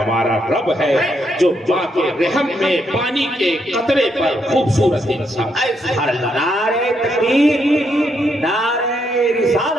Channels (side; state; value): both; normal; correlation 0.77